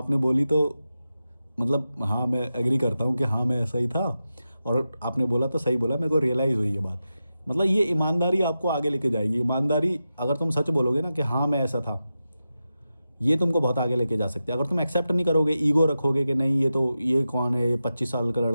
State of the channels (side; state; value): both; inverted; correlation -0.91